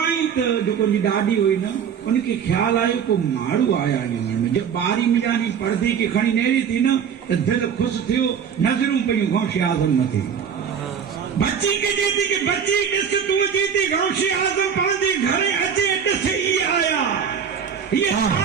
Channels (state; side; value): quieter; left; 7.5 dB